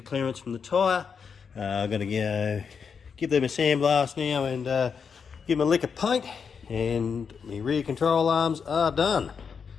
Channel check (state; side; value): quieter; right; 6.2 dB